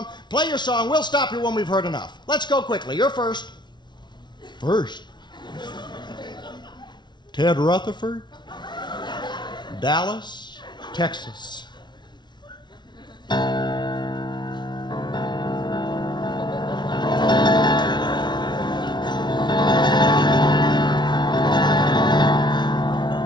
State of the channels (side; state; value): right; late; 0.21 ms